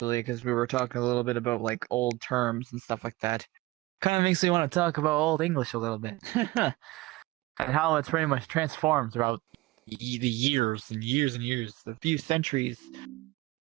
because we were talking a little bit about like old terms and stuff like that. Kind of makes me want to talk about Old English a little bit. And how it's pretty much transformed throughout the years and years and years, a few centuries.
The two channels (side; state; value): left; quieter; 20.0 dB